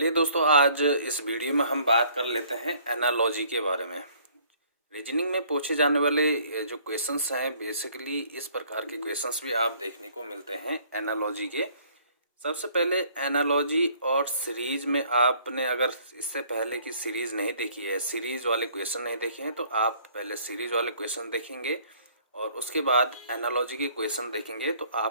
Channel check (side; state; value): both; inverted; correlation -0.59